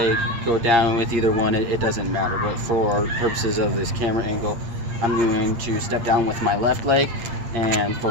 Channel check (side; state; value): left; late; 8.7 ms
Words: go down with either one, it doesn't matter. But for purposes of this camera angle, I'm going to step down with my left leg and